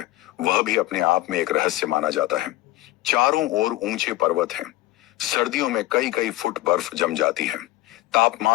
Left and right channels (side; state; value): right; quieter; 17.7 dB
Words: वह भी अपने आप में एक रहस्य माना जाता है। चारों ओर ऊंचे पर्वत हैं। सर्दियों में कई कई फुट बर्फ जम जाती है।